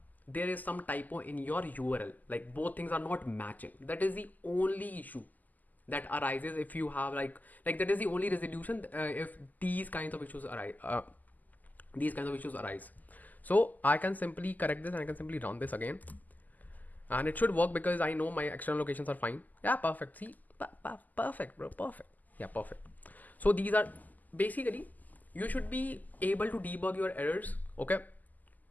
there is some typo in your URL. Like both things are not matching. That is the only issue that arises if you have like that is the only resolution if these kinds of issues arise. So I can simply correct this and I can simply run this again, and it should work because I know my external locations are fine. Yeah, perfect. See, perfect, bro. Perfect. Yeah, perfect. So these are basically, you should be able to debug your errors. Okay.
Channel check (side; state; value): right; late; 0.082 ms